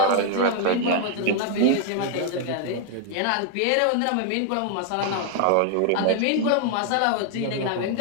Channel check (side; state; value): both; different; correlation 0.00